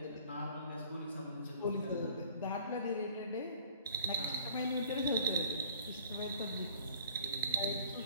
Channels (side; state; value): both; inverted; correlation -0.50